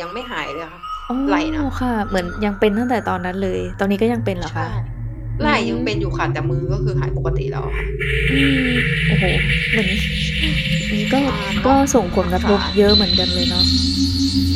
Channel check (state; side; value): identical; both; correlation 1.00